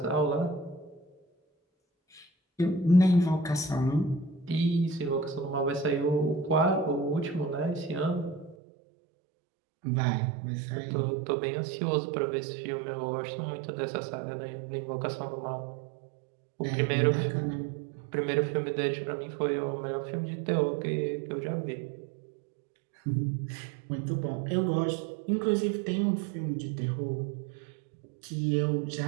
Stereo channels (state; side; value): drops out; left; at 8.6 s